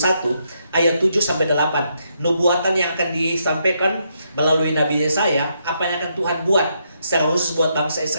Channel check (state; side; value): inverted; both; correlation -0.78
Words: ayat 7 sampai 8. Nubuatan yang akan disampaikan melalui Nabi Yesaya, apa yang akan Tuhan buat secara khusus buat bangsa